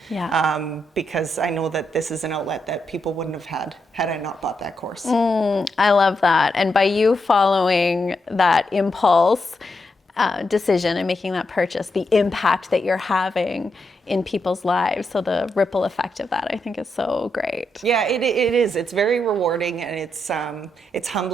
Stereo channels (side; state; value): both; normal; correlation 0.83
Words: Yeah. Because I know that this is an outlet that people wouldn't have had I not bought that course. I love that. And by you following that impulse decision and making that purchase, the impact that you're having in people's lives, so the ripple effect of that, I think, is so great. Yeah, it is. It's very rewarding, and it's